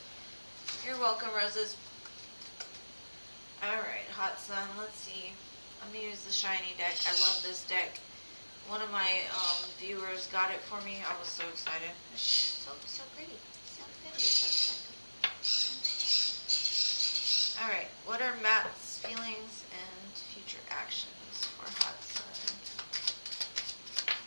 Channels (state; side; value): inverted; both; correlation -1.00